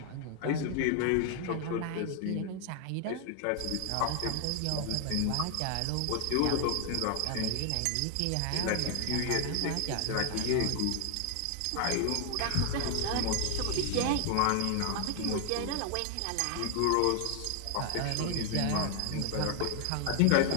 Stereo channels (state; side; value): different; both; correlation 0.00